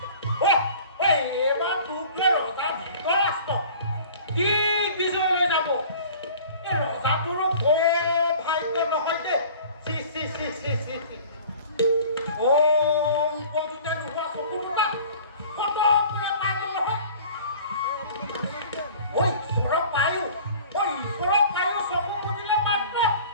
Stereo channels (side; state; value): both; inverted; correlation -0.46